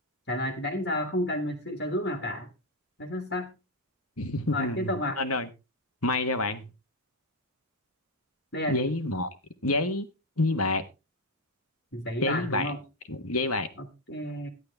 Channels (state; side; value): normal; both; correlation 0.06